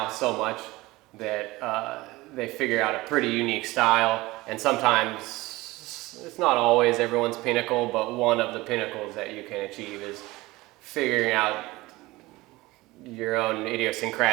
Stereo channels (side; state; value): left; quieter; 20.1 dB